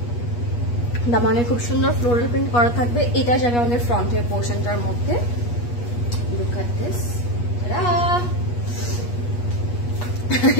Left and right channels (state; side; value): late; right; 8.3 ms